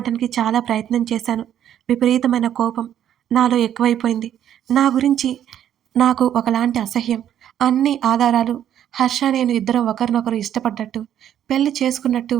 చాలా ప్రయత్నం చేశాను. విపరీతమైన కోపం నాలో ఎక్కువైపోయింది. నా గురించి నాకు ఒకలాంటి అసహ్యం. అన్ని ఆధారాలు హర్ష నేను ఇద్దరం ఒకరినొకరు ఇష్టపడ్డట్టు, పెళ్లి చేసుకున్నట్టు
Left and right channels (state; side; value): quieter; left; 10.4 dB